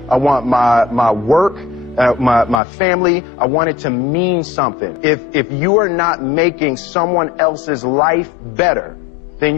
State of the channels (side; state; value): right; drops out; at 2.6 s